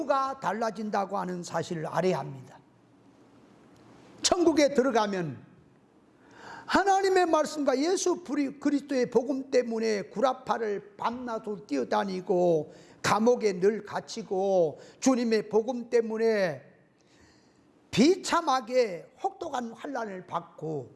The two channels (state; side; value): identical; both; correlation 1.00